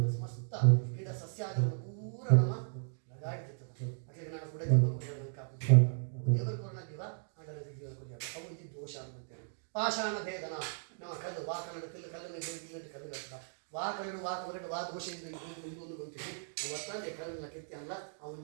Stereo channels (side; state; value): left; silent; digital silence